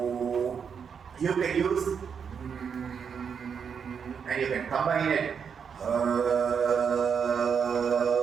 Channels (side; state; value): left; quieter; 6.8 dB